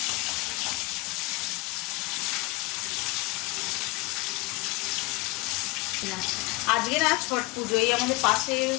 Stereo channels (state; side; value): quieter; right; 24.1 dB